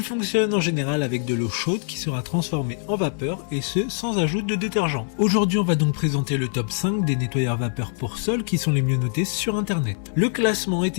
fonctionne en général avec de l'eau chaude qui sera transformée en vapeur et ce, sans ajout de détergent. Aujourd'hui, on va donc présenter le top 5 des nettoyeurs vapeur pour sol qui sont les mieux notés sur internet. Le classement est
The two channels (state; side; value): silent; right; 62 dB below the other